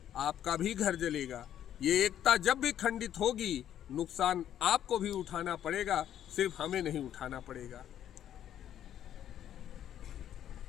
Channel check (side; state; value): right; quieter; 10.6 dB